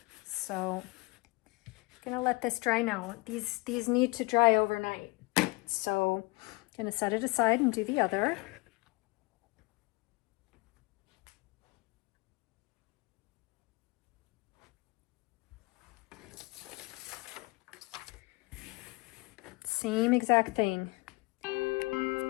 So I'm gonna let this dry now. These need to dry overnight. So I'm gonna set it aside and do the other. Same exact thing.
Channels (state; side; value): quieter; right; 25.8 dB